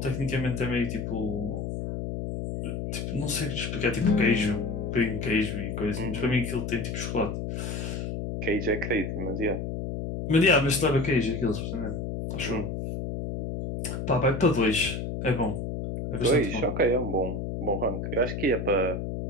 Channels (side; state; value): left; noise; hum, 4 dB below the sound